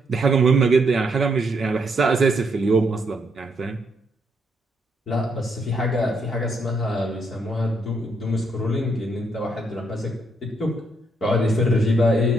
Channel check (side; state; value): both; normal; correlation 0.75